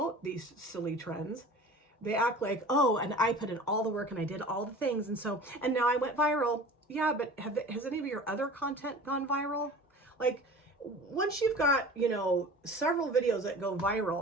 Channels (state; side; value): normal; both; correlation 0.40